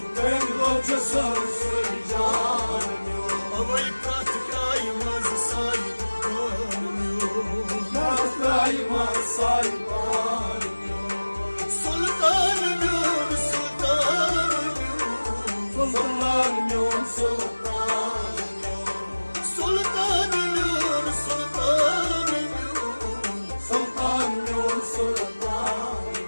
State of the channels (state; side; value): inverted; both; correlation -1.00